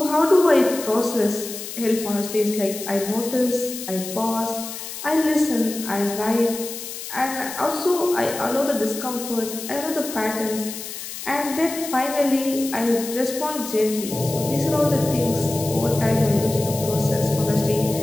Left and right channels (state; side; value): noise; left; hiss, 9 dB below the sound